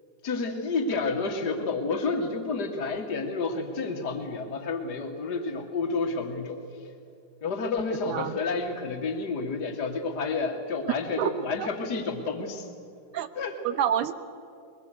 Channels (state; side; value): late; right; 5.0 ms